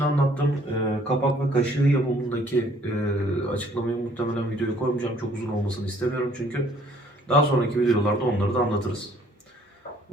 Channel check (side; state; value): both; normal; correlation 0.60